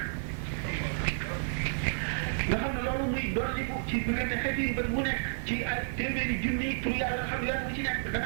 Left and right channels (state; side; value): silent; left; digital silence